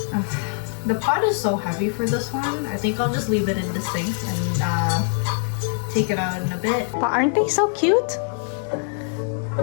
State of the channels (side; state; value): right; silent; 63 dB below the other